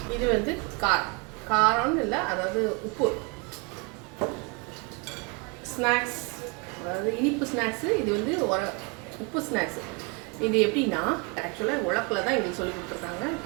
இது வந்து காரம்னு இல்லை, அதாவது உப்பு ஸ்நாக்ஸ், அதாவது இனிப்பு ஸ்நாக்ஸு. இது வந்து உப்பு ஸ்நாக்ஸு. இது எப்படின்னா, ஆக்சுவலாக உலக்கில் தான் எங்களுக்கு சொல்லி கொடுத்துருக்காங்க.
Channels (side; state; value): left; quieter; 31.3 dB